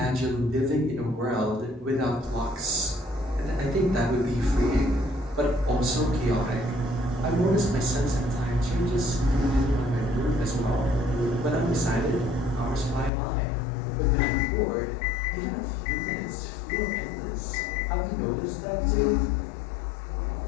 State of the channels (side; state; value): right; drops out; at 13.1 s